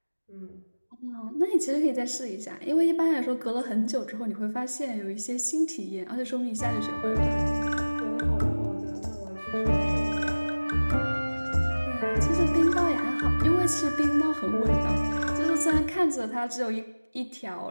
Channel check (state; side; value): inverted; both; correlation -1.00